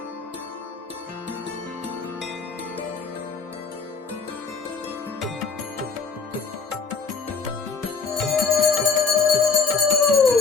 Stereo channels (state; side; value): quieter; right; 5.0 dB